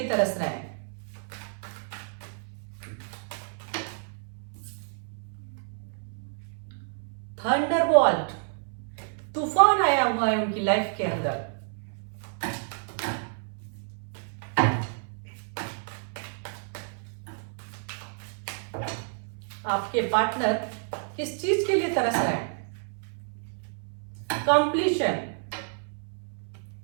तरस रहे हैं। थंडरबोल्ट, तूफान आया हुआ है उनकी लाइफ के अंदर। आपके पार्टनर किस चीज के लिए तरस रहे हैं? कंप्लीशन,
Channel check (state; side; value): silent; left; 58 dB below the other